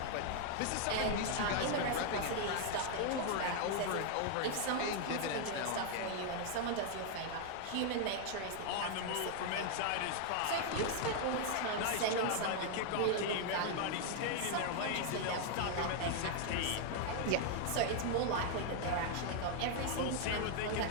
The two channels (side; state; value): both; different; correlation 0.00